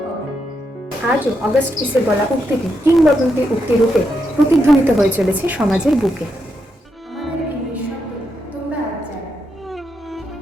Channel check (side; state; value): both; normal; correlation 0.82